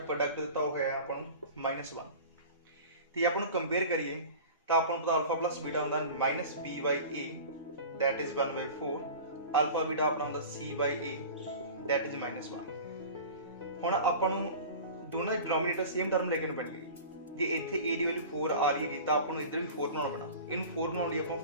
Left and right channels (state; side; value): inverted; both; correlation -0.37